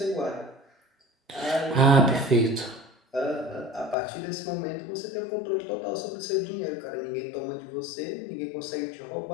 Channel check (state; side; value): drops out; right; at 4.0 s